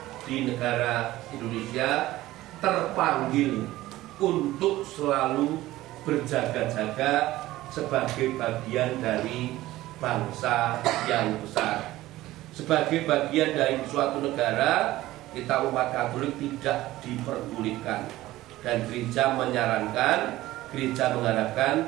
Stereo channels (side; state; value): left; quieter; 16.5 dB